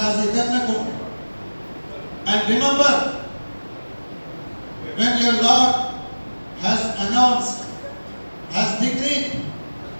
And remember, when your Lord has announced, has decreed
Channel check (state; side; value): inverted; both; correlation -1.00